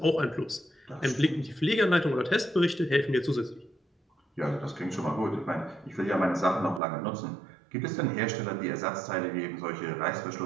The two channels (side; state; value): left; drops out; at 6.8 s